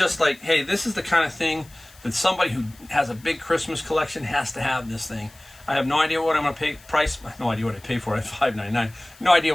like, hey, this is the kind of thing that somebody who has a big Christmas collection has to have this thing. I have no idea what I'm going to pay. No idea what I pay for it. $5.99. No idea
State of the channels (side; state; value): left; noise; hiss, 25 dB below the sound